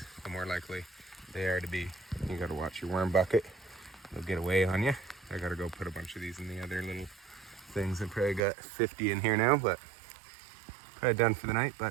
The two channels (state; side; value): drops out; left; at 8.4 s